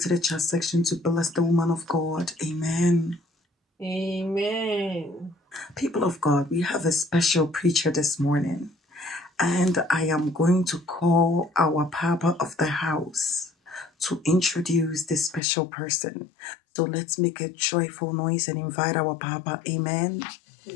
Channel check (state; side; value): drops out; right; at 15.4 s